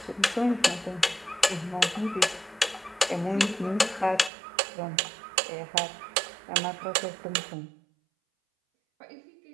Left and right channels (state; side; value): drops out; left; at 4.3 s